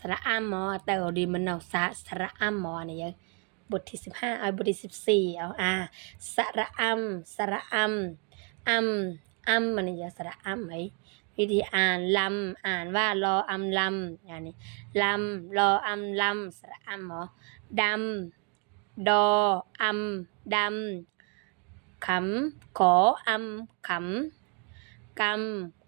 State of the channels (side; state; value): left; quieter; 36.7 dB